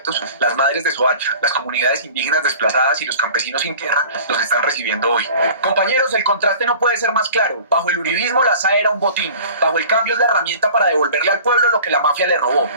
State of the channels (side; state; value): both; inverted; correlation -0.44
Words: las madres de Soacha, las comunidades indígenas desplazadas y los campesinos sin tierra los están recibiendo hoy. Compañeros, el contraste no puede ser más claro. Bajo el uribismo la SAE era un botín. Bajo el cambio es la herramienta para devolverle al pueblo lo que la mafia le robó.